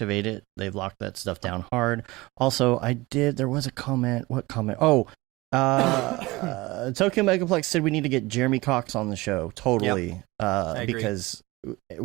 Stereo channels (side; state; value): left; quieter; 21.5 dB